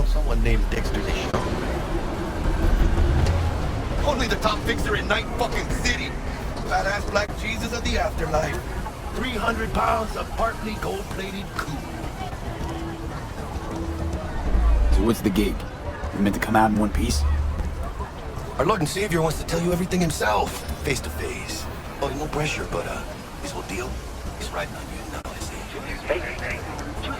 someone named Dexter Deschamps. Only the top fixer in Night fucking City. Badass black Jesus of the afterlife. 300 pounds of partly gold-plated coup. So what's the gig? You meant to come out in one piece? Our Lord and Savior wants to tell you everything himself, face to face. Oh, no pressure, but his whole deal is riding on you now, I say.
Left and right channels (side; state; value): both; identical; correlation 1.00